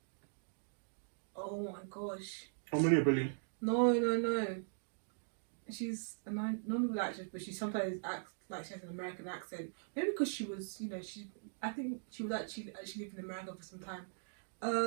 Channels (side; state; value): left; silent; digital silence